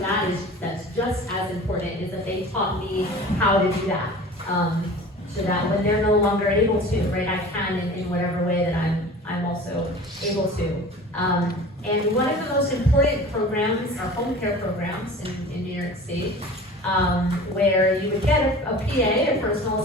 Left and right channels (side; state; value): both; normal; correlation 0.40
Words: just as important is that they taught me how to do that. So that when they're no longer able to, right, I can in whatever way that I'm also able to. And one of the most important programs are home care programs in New York State. Where you would get a PA, a personal